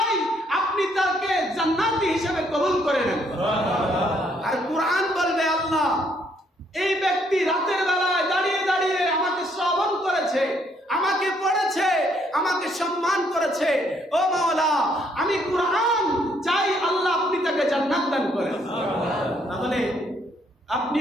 আপনি তাকে জান্নাতি হিসেবে কবুল করে নেন। আর কুরআন বলবে আল্লাহ এই ব্যক্তি রাতের বেলায় দাঁড়িয়ে দাঁড়িয়ে আমাকে শ্রবণ করেছে, আমাকে পড়েছে, আমাকে সম্মান করেছে। ও মাওলা আমি কুরআন চাই আল্লাহ আপনি তাকে জান্নাত দান করেন। তাহলে আপনি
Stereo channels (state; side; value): normal; both; correlation 0.69